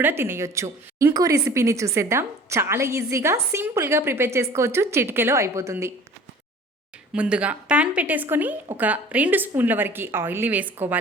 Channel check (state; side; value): normal; both; correlation 0.46